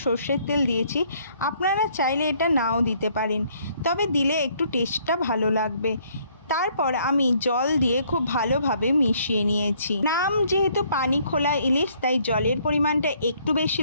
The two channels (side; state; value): both; inverted; correlation -0.65